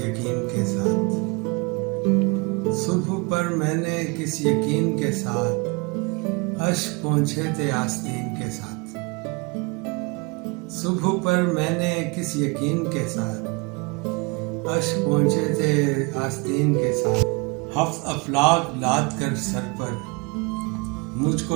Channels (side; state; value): left; quieter; 28.7 dB